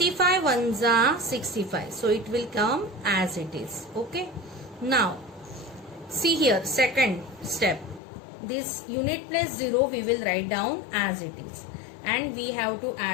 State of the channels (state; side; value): drops out; right; at 8.0 s